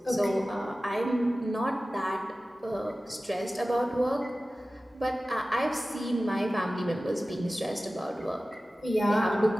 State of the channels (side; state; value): both; normal; correlation 0.96